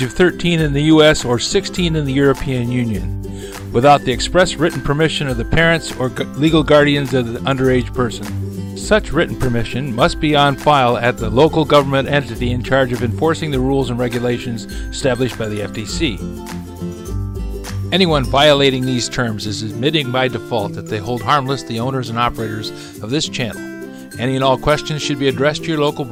of 13 in the U.S. or 16 in the European Union, without the express written permission of the parents or legal guardians of the underage person. Such written permission must be on file at the local government entity in charge of enforcing the rules and regulations established by the FTC. Anyone violating these terms is admitting by default that they hold harmless the owners and operators of this channel. Any and all questions should be addressed to your local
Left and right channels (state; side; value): identical; both; correlation 1.00